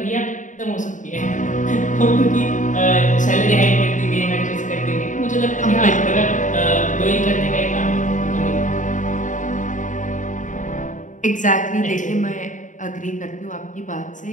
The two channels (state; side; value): late; right; 0.37 ms